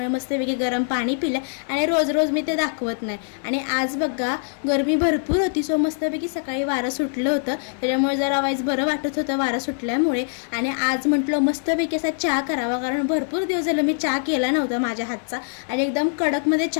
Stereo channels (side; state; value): right; silent; digital silence